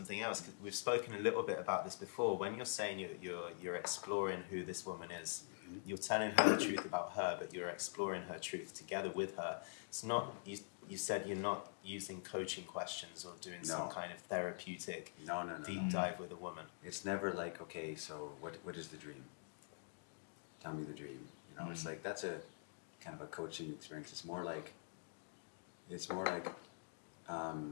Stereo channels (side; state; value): right; silent; digital silence